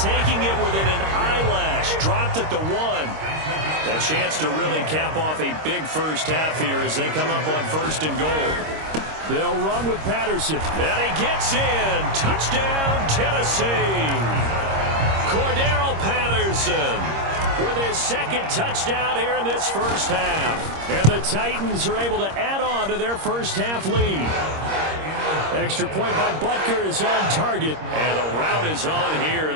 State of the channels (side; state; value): left; late; 26 ms